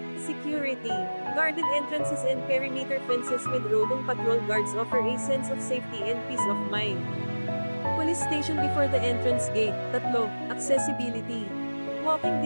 security. Guarded entrances and perimeter fences with roving patrol guards offer a sense of safety and peace of mind. Police station before the entrance gate. Tatlo, accessibility. Walking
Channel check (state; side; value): inverted; both; correlation -1.00